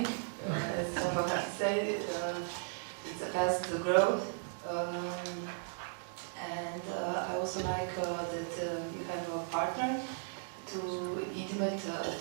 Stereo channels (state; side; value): silent; left; digital silence